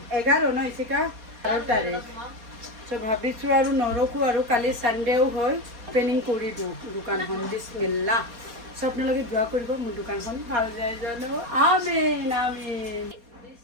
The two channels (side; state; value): left; late; 4.2 ms